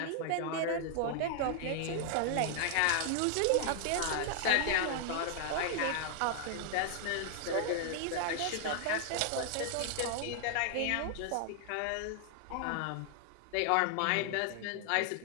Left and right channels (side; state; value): both; different; correlation 0.00